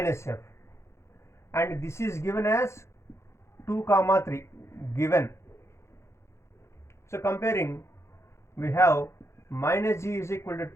f, and this is given as 2, 3 given. So comparing, we have minus g is equal to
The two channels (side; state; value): right; late; 0.13 ms